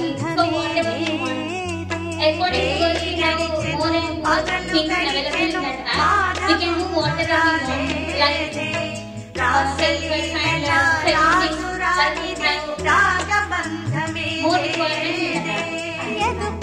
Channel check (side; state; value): both; identical; correlation 1.00